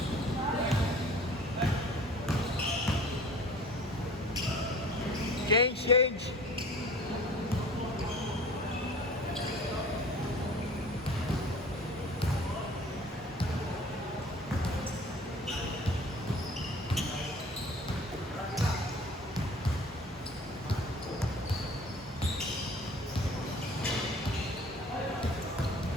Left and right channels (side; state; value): both; normal; correlation 0.45